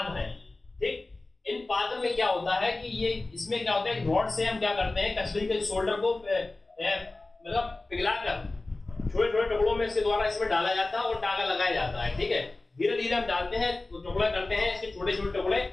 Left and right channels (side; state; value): right; quieter; 3.1 dB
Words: है। ठीक, इन पात्र में क्या होता है कि ये, इसमें क्या होता है, रॉड से हम क्या करते हैं, कचड़ी के शोल्डर को मतलब पिघलाकर छोटे छोटे टुकड़ों में इसके द्वारा इसमें डाला जाता है और टाका लगाया जाता है। ठीक है, धीरे धीरे हम डालते हैं, तो टुकड़े करते हैं इसके छोटे छोटे टुकड़े,